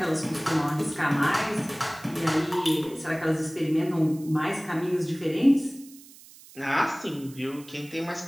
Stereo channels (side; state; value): right; noise; hiss, 21 dB below the sound